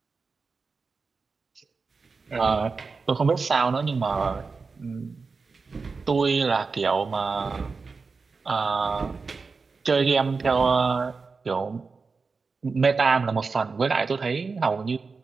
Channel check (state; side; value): quieter; left; 4.5 dB